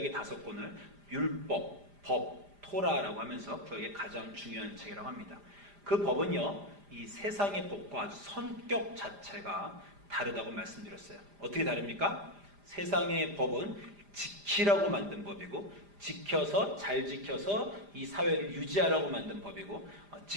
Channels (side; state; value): left; late; 5.0 ms